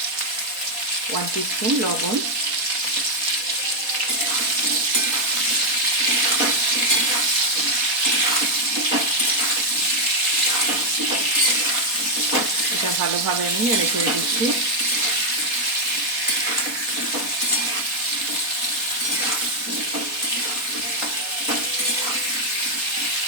1 টিস্পুন লবণ, এটা ভালোভাবে আমি নেড়ে করে দিচ্ছি।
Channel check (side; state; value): left; late; 4.2 ms